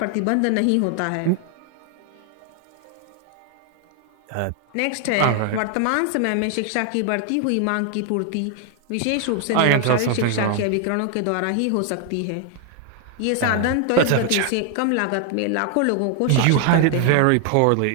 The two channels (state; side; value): different; both; correlation 0.00